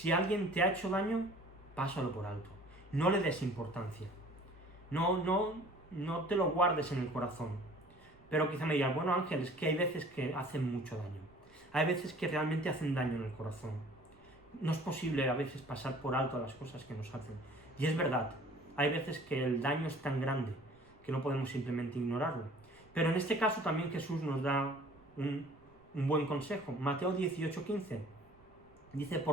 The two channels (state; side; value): noise; right; rumble, 28 dB below the sound